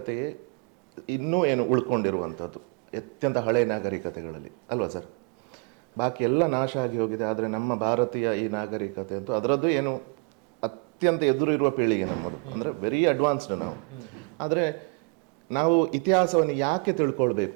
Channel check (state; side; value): quieter; left; 32.8 dB